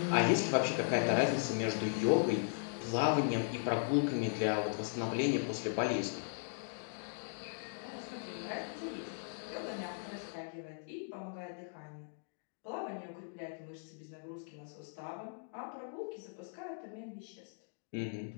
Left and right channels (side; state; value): right; silent; digital silence